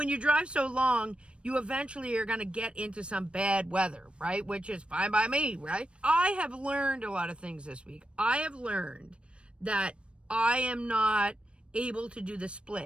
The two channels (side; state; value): left; late; 0.058 ms